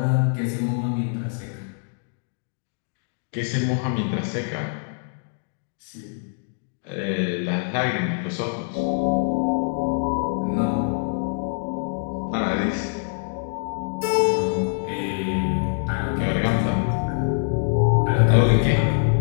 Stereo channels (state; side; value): silent; right; digital silence